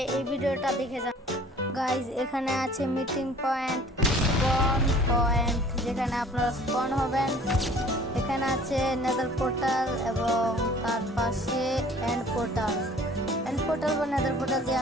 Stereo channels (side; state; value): both; normal; correlation 0.50